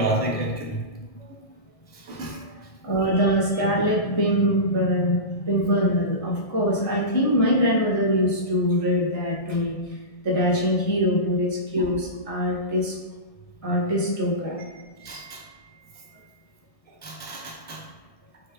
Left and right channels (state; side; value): late; right; 1.6 ms